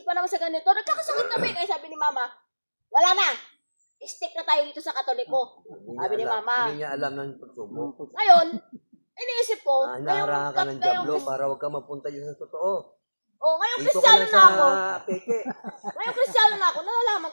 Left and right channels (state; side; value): inverted; both; correlation -1.00